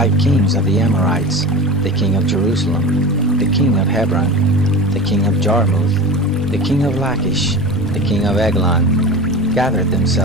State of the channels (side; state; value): both; normal; correlation 0.31